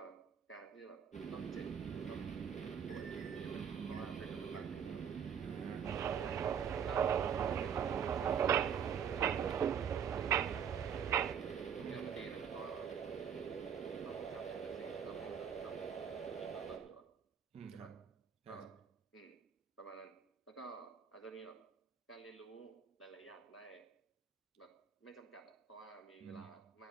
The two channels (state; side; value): quieter; left; 7.8 dB